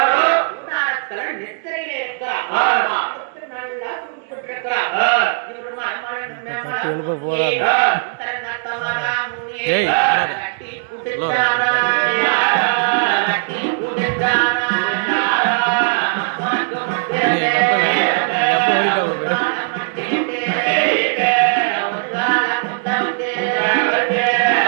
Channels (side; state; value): left; silent; 67 dB below the other